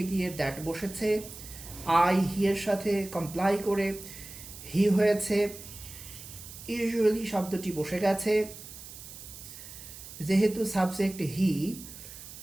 গিয়ে দ্যাট বসেছে। আই হি এর সাথে কমপ্লাই করে হি হয়েছে। ইউজুয়ালি শব্দটি বসে গেছে। যেহেতু সাবজেক্ট হি,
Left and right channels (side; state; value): right; noise; hiss, 14 dB below the sound